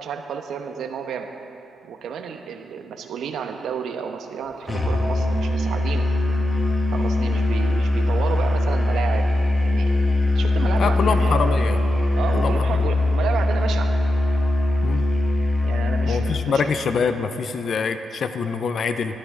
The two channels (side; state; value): both; normal; correlation 0.89